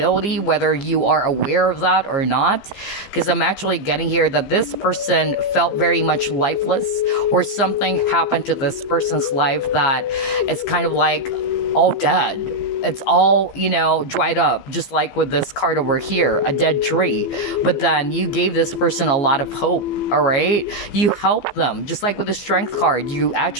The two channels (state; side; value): late; right; 15 ms